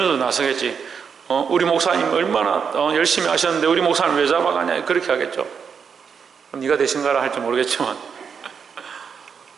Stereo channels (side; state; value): left; quieter; 6.5 dB